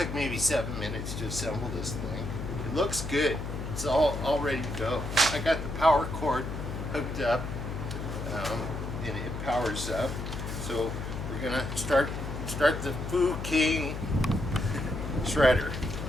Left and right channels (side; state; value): left; noise; hum, 5 dB below the sound